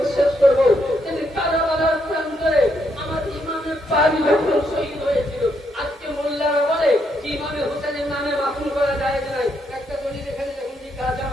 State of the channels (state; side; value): normal; both; correlation 0.76